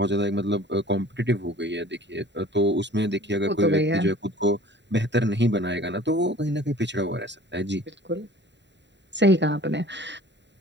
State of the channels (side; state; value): left; late; 0.52 ms